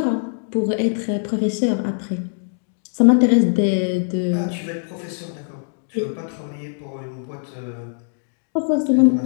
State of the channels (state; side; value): silent; right; digital silence